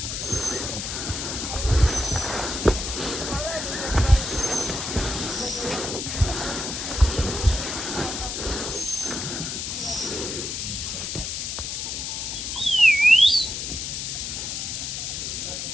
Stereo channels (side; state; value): left; noise; hiss, 4 dB below the sound